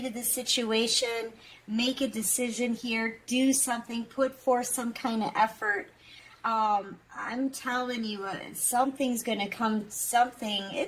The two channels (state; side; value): identical; both; correlation 1.00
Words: to the situation, make a decision here, do something, put forth some kind of effort. I'm telling you, something's going to come,